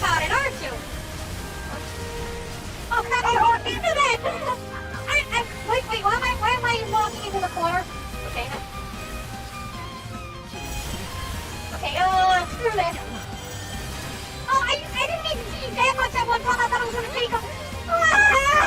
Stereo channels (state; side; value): identical; both; correlation 1.00